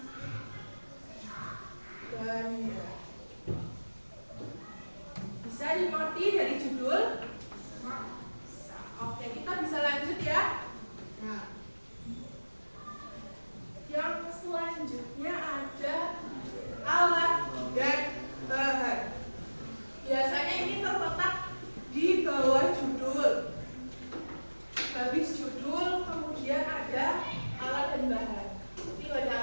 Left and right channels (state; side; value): inverted; both; correlation -1.00